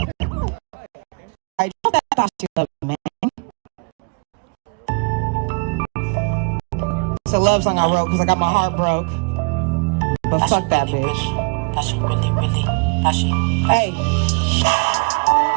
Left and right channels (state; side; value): quieter; left; 33.4 dB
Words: Alright, I thought she loved me, man. It's a love song I wrote because I got my heart broke. But fuck that bitch. Thought she really, thought she. Hey.